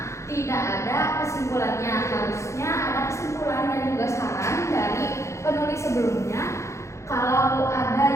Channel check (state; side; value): late; right; 0.14 ms